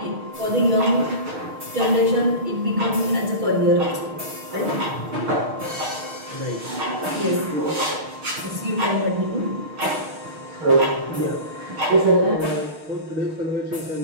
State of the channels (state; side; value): late; left; 6.4 ms